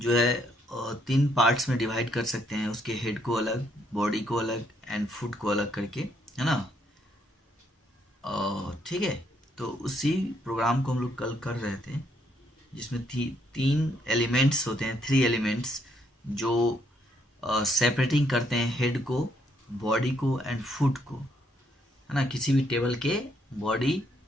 है तीन पार्ट्स में डिवाइड कर सकते हैं, उसके हेड को अलग, बॉडी को अलग एंड फुट को अलग करके, है ना। ठीक है। तो उसी प्रोग्राम को हम लोग कल कर रहे थे, जिसमें तीन एलिमेंट्स होते हैं, थ्री एलिमेंट्स जो सेपरेटिंग करते हैं हेड को, बॉडी को एंड फुट को, है ना। किसी भी टेबल के बॉडी,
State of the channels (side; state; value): both; normal; correlation 0.72